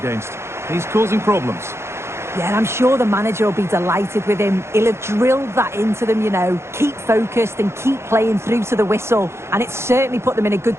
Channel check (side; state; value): left; late; 0.13 ms